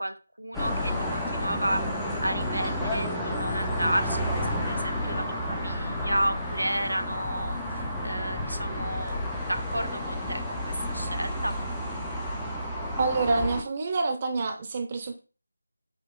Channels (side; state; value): both; inverted; correlation -0.79